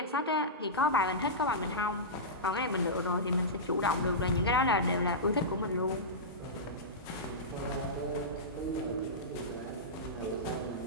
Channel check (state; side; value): normal; both; correlation -0.15